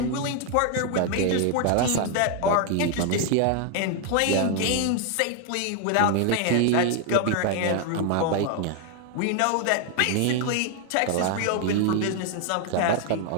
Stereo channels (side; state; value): both; different; correlation 0.00